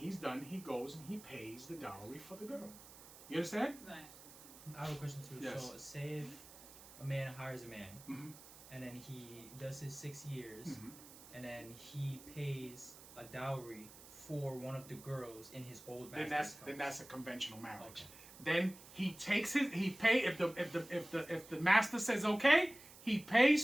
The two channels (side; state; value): right; noise; hiss, 18 dB below the sound